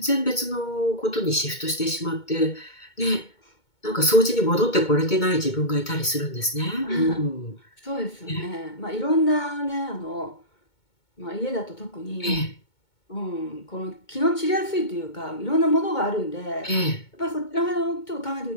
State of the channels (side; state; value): right; late; 2.2 ms